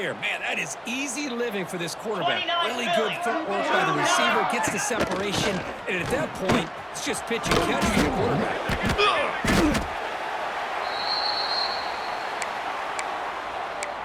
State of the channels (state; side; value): identical; both; correlation 1.00